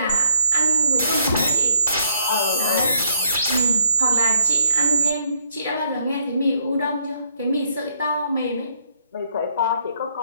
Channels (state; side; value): inverted; both; correlation -0.67